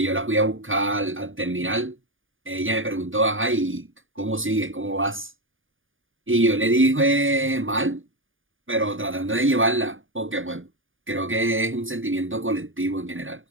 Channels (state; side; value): late; left; 0.58 ms